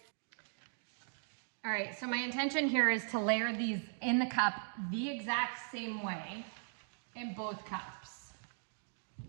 All right, so my intention here is to layer these in the cup the exact same way in both cups.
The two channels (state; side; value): silent; left; digital silence